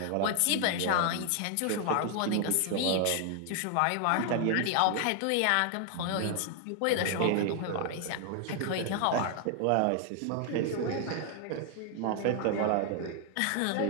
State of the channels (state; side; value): different; both; correlation 0.00